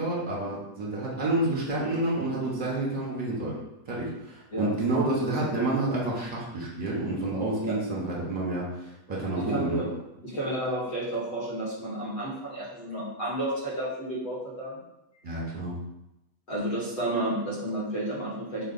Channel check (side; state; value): right; late; 8.1 ms